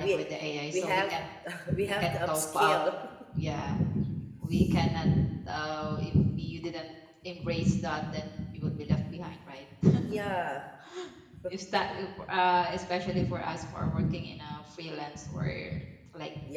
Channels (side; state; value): both; identical; correlation 1.00